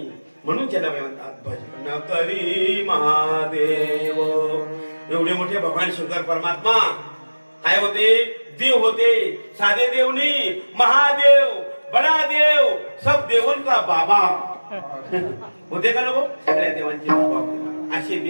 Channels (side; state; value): both; inverted; correlation -1.00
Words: म्हणून त्याला म्हणतात भजन करी महादेव. एवढे मोठे भगवान शंकर परमात्मा काय होते? देव होते. साधे देव नाही, महादेव, बडा देव, सब देवन का बाबा होते का नको? सगळ्या देवांचे बाबा होते. असे